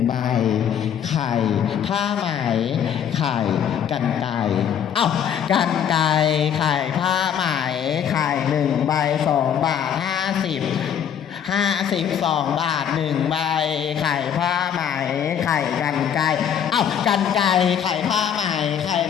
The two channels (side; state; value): right; quieter; 8.8 dB